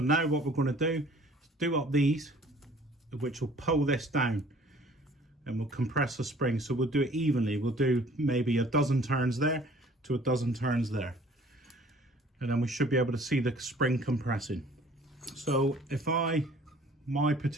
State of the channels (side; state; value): both; normal; correlation 0.53